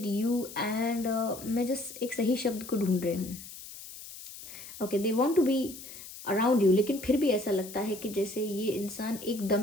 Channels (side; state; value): left; noise; hiss, 14 dB below the sound